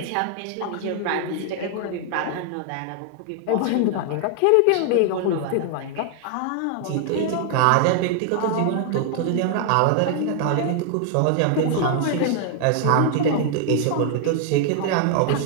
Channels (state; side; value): different; both; correlation 0.00